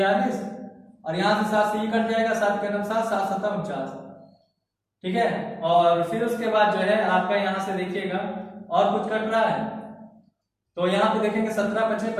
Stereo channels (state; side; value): identical; both; correlation 1.00